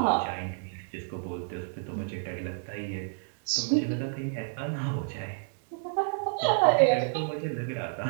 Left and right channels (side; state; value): left; silent; digital silence